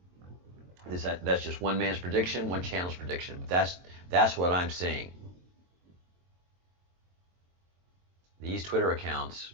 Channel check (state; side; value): late; left; 23 ms